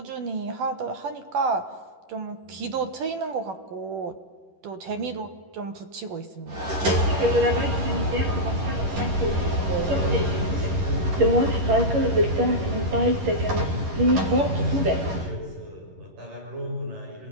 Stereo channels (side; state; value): left; late; 11 ms